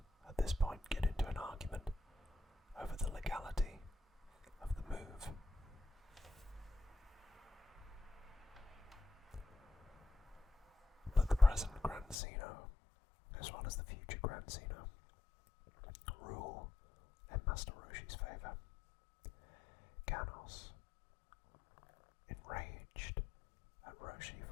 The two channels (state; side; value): drops out; right; at 12.2 s